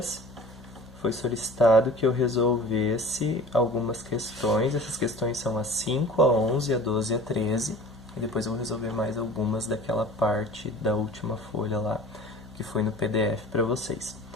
foi solicitado que eu resolvesse algumas questões. Essas questões são a 5, a 11, a 12 e a 13. E depois eu vou resolver mais algumas daquela parte da última folha lá. que foi no PDF para vocês.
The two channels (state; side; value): normal; both; correlation 0.42